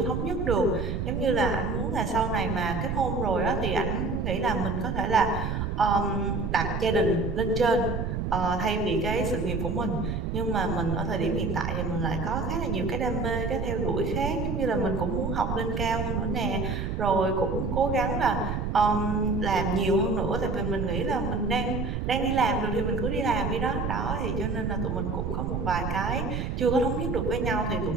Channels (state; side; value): noise; right; rumble, 2 dB below the sound